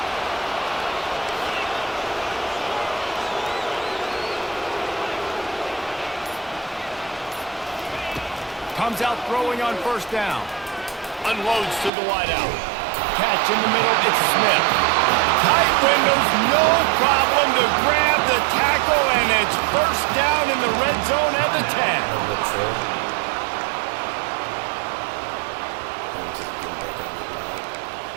Comes out throwing on first down. Unloads to the wideout. Catch in the middle, it's Smith. Tight windows, no problem to grab the tackle, and it's first down in the red zone at the 10.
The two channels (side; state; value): left; drops out; at 11.9 s